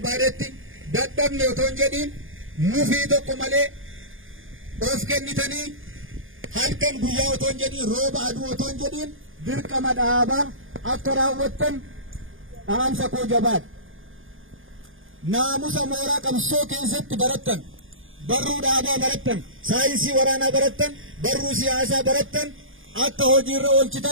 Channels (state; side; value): late; left; 0.58 ms